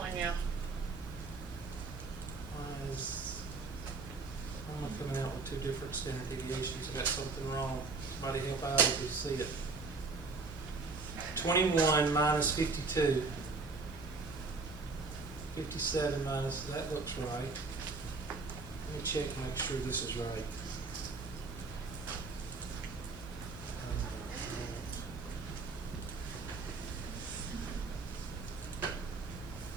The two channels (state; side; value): quieter; left; 3.9 dB